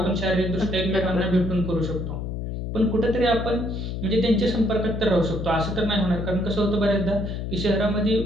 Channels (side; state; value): left; noise; hum, 4 dB below the sound